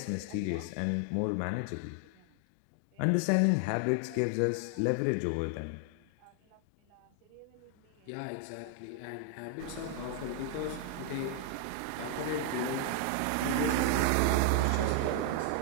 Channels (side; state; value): both; different; correlation 0.00